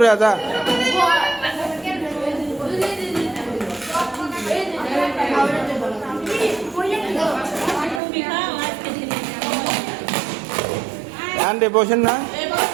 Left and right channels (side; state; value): left; drops out; at 8.0 s